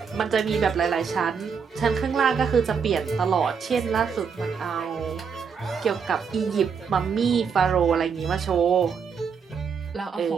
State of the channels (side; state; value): left; quieter; 6.3 dB